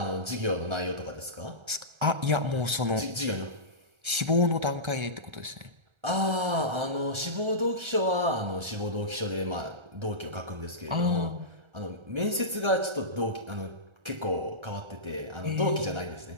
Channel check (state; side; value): late; left; 1.3 ms